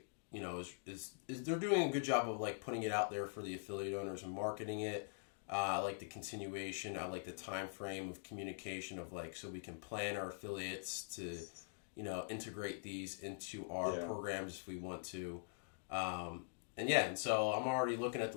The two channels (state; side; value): silent; right; digital silence